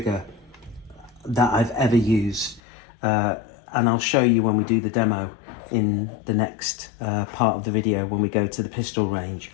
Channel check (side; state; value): right; drops out; at 2.6 s